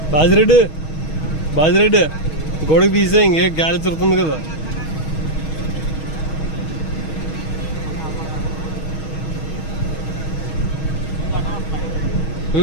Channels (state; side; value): late; right; 6.3 ms